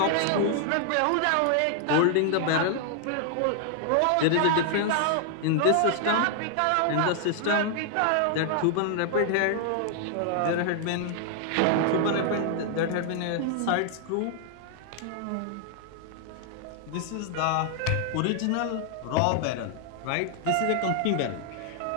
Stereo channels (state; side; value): different; both; correlation 0.00